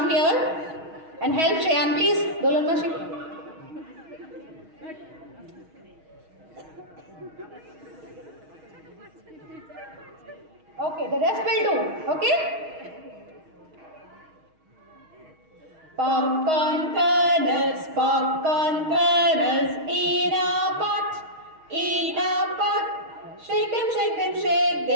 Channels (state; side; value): late; left; 6.3 ms